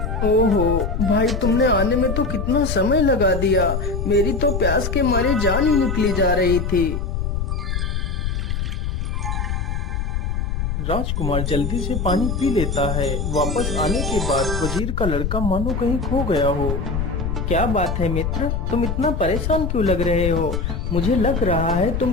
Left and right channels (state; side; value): noise; left; rumble, 2 dB below the sound